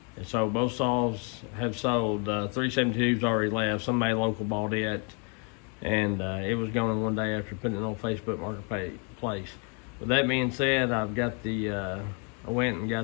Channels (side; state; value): right; quieter; 36.7 dB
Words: And so both saws have sold. 372's already left. Somebody local bought it, and it was going one day after putting it on Facebook Marketplace. With that being said, I've got the I went and